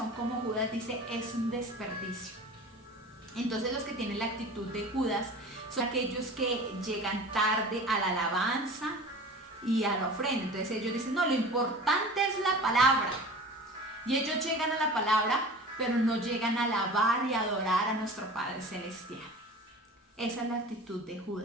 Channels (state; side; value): normal; both; correlation 0.38